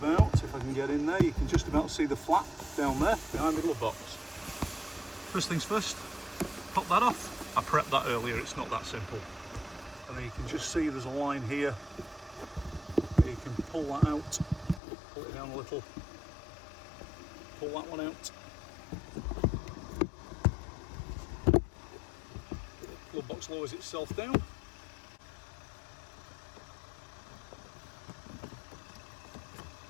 if I can get in there, you can just about see the flap down there behind the glove box. First things first, pop that off. I prepped that earlier, it's not that simple. And then you can just see there's a line here. You can pull that out, pull it down a little, pull that one out. Glove box lowers itself down.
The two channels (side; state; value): right; drops out; at 14.8 s